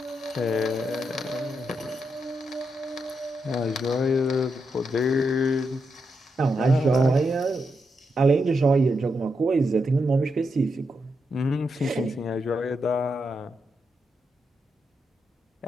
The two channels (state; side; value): normal; both; correlation 0.83